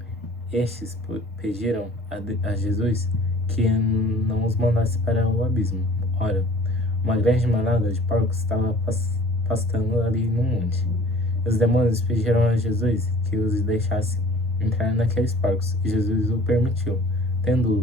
Estes pediram a Jesus que não os mandasse para o abismo. Ora, uma grande manada de porcos estava pastando ali no monte. Os demônios pediram a Jesus que os deixasse entrar naqueles porcos, e Jesus o permitiu. Tendo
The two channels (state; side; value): normal; both; correlation 0.50